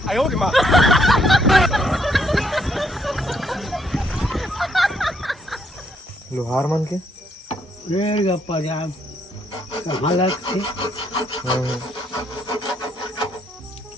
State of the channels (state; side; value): normal; both; correlation 0.71